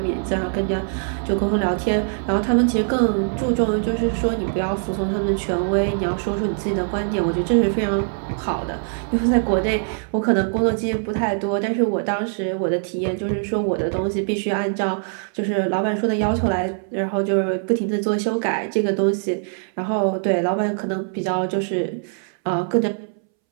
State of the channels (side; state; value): left; silent; 64 dB below the other